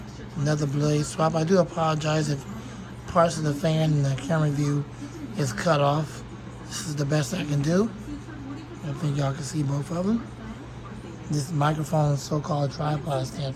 another blade swap. I do apologize if parts of the fan and the camera view is cut off. This is the best I can do. I think y'all can see both of them. This microphone so-called tripod stand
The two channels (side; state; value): both; identical; correlation 1.00